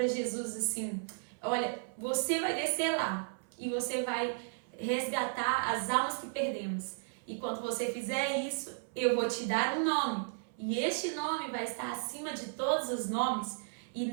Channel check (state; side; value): silent; left; 55 dB below the other